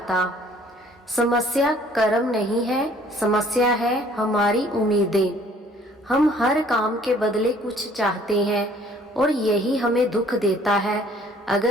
समस्या कर्म नहीं है, समस्या है हमारी उम्मीदें। हम हर काम के बदले कुछ चाहते हैं और यही हमें दुख देता है।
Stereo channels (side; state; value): both; normal; correlation 0.57